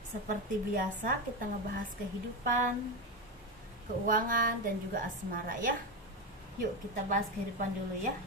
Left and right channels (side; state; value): both; normal; correlation 0.14